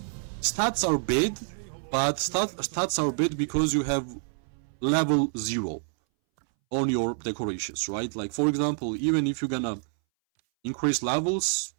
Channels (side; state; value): left; silent; 60 dB below the other